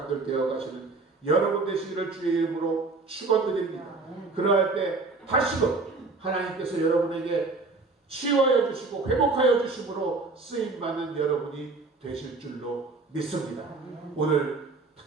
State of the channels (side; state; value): left; quieter; 3.7 dB